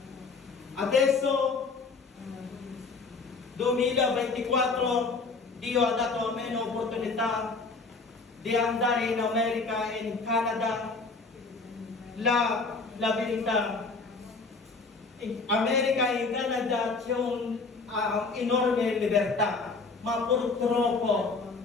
Adesso, 2024, Dio ha dato a me l'opportunità di andare in America e in Canada. La verità, in America e in Canada c'è un'enorme libertà, ma purtroppo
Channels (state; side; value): quieter; right; 4.1 dB